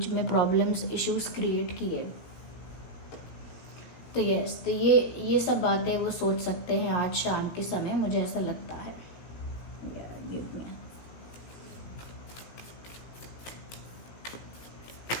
में प्रॉब्लम्स, इश्यूज क्रिएट किए। तो यस, तो ये सब बातें वो सोच सकते हैं आज शाम के समय, मुझे ऐसा लगता है।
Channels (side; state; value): right; late; 17 ms